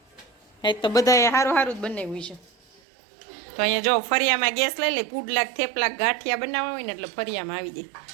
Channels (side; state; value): left; drops out; at 2.8 s